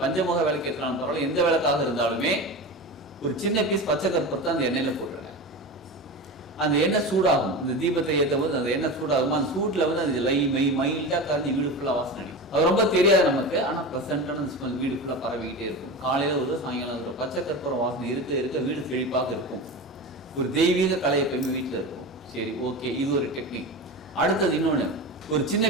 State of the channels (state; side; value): normal; both; correlation 0.26